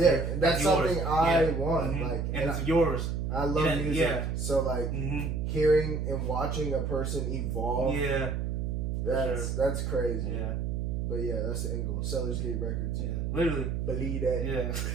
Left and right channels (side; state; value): right; noise; hum, 1 dB below the sound